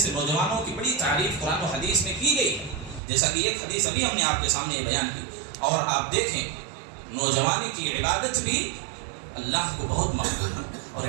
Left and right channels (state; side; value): drops out; left; at 3.0 s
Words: نوجوانوں کی بڑی تعریف قرآن و حدیث میں کی گئی ہے، جیسا کہ ایک حدیث ابھی ہم نے آپ کے سامنے یہ بیان کی۔ اور آپ دیکھیں نوجوانی کی عبادت بھی اللہ کو بہت مقبول ہے، اور